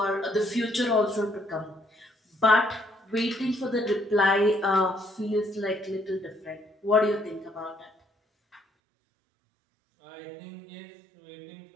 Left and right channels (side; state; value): left; drops out; at 8.6 s